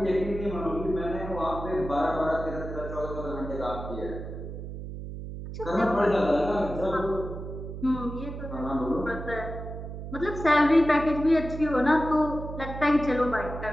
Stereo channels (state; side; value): noise; right; hum, 8 dB below the sound